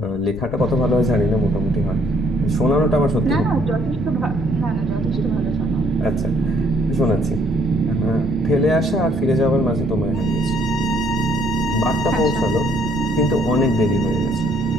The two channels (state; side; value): noise; left; rumble, 12 dB below the sound